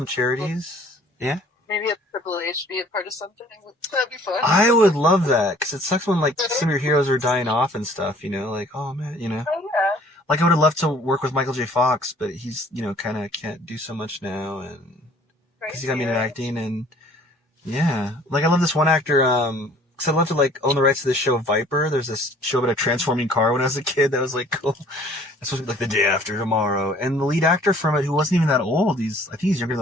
charities. Yeah. Maybe a Triple H be a part of something. That'd be fun. I would love that because it sucks when like some of your heroes are dying off and stuff. You know, like oh man, you know. Oh yeah. Like I would have loved to work with Michael J. Fox, but he's kind of can't do so much now, and because he got me into acting, and yeah, like I love this one actor. Because I'd love to like own the rights to this show Viper. There's this show about a transforming car when I was a kid that was like cool. It's supposed to be like The Day After Tomorrow, and the lead actor from it, who wasn't even that old, I think he's younger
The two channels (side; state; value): both; normal; correlation 0.54